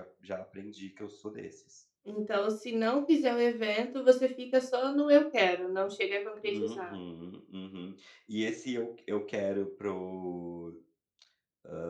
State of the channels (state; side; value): identical; both; correlation 1.00